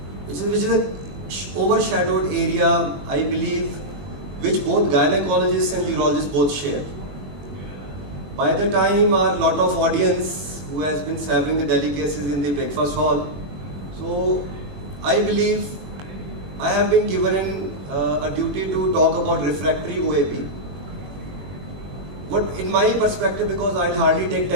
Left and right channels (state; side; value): late; left; 21 ms